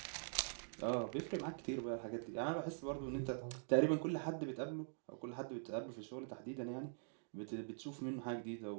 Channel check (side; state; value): left; silent; digital silence